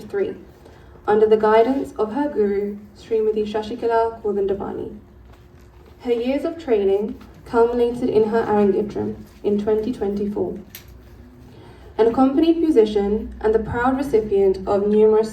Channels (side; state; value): both; identical; correlation 1.00